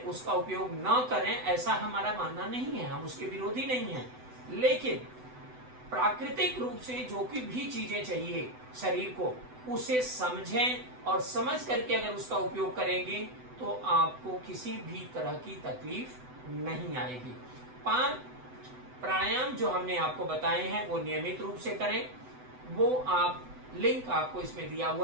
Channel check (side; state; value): left; late; 7.9 ms